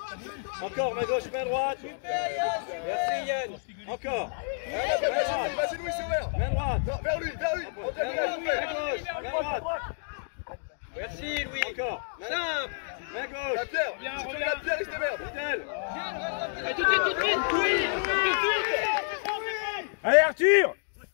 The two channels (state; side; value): silent; right; digital silence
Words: Encore, main gauche, main droite! Merci Yann! Encore! Vas-y Louis, c'est ouvert! Main droite! Non, vers lui! Main gauche, main droite! Merci Louis! Encore! Simple! Main gauche! La pierre! Si tu veux la pierre, il se démerde! Tout de suite, oui! Allez Arthur!